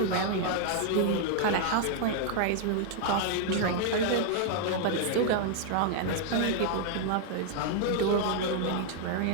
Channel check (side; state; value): both; different; correlation 0.00